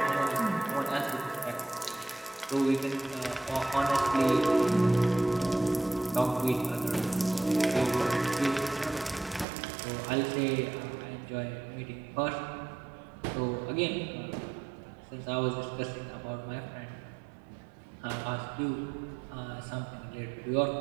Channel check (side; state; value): left; drops out; at 9.5 s